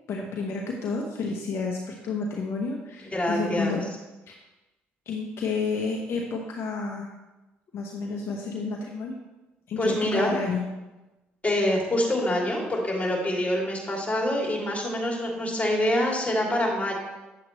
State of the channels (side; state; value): both; normal; correlation 0.72